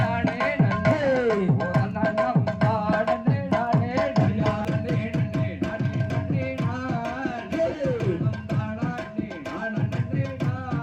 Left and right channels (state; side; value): identical; both; correlation 1.00